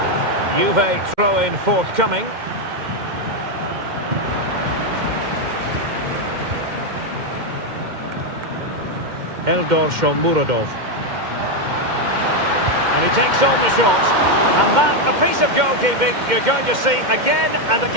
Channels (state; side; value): late; left; 2.1 ms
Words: Juve throw-in forthcoming. Eldor Shomurodov. And he takes on the shot. And that, a piece of goalkeeping you're going to see again and